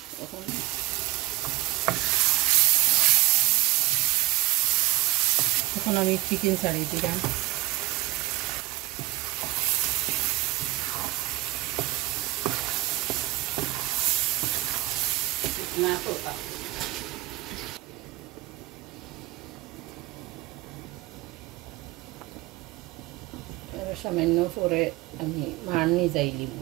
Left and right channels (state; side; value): quieter; left; 17.6 dB